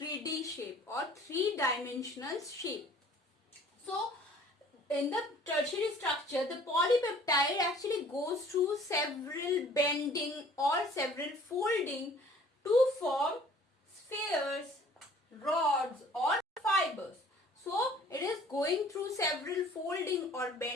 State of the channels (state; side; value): normal; both; correlation 0.53